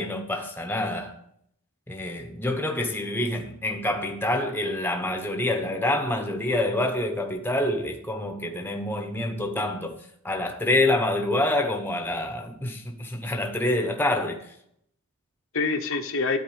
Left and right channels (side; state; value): both; normal; correlation 0.48